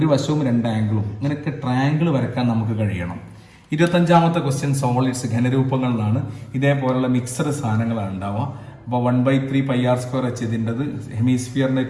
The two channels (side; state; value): both; identical; correlation 1.00